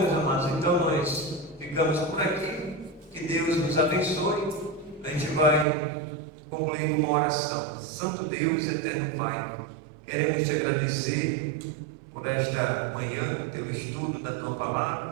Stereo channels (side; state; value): left; drops out; at 5.7 s